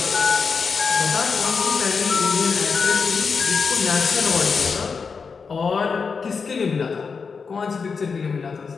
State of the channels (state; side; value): quieter; right; 5.3 dB